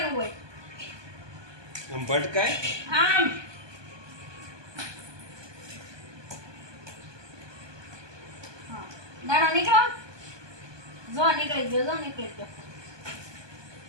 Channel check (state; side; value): late; left; 1.2 ms